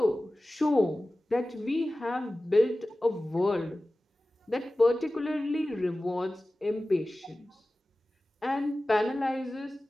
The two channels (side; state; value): both; normal; correlation 0.96